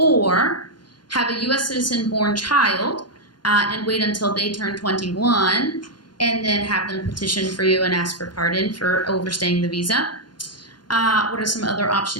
have a U.S. citizen born child and wait until they turn 21, and then have them petition for you and ask for pardon for overstaying the visa. What are some other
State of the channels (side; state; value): right; late; 0.71 ms